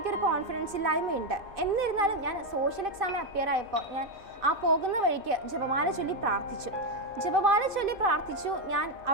കോൺഫിഡൻസ് ഇല്ലായ്മയുണ്ട്. എന്നിരുന്നാലും ഞാൻ സോഷ്യൽ എക്സാമിന് അപ്പിയർ ആയപ്പോൾ ഞാൻ ആ പോകുന്ന വഴിക്ക് ജപമാല ചൊല്ലി പ്രാർത്ഥിച്ചു. ഞാൻ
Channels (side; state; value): left; late; 2.5 ms